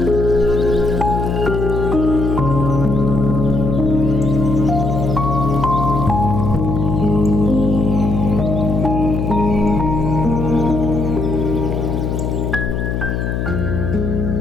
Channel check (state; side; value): noise; left; hum, 1 dB below the sound